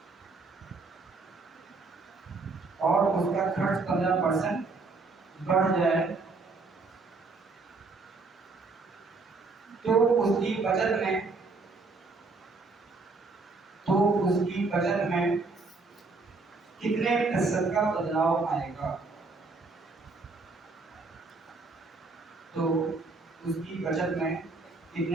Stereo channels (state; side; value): quieter; left; 3.8 dB